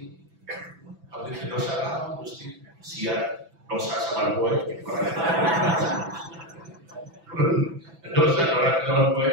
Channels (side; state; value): left; late; 6.0 ms